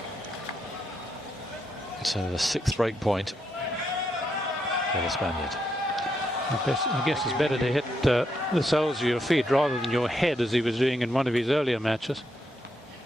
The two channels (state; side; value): normal; both; correlation 0.79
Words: So the sixth break point for the Spaniard. I guess it's better to hit the soles of your feet rather than your head, as he was doing in one of his earlier matches.